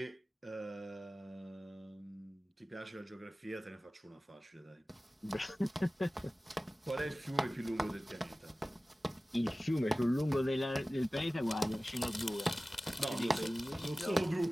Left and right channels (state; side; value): normal; both; correlation 0.97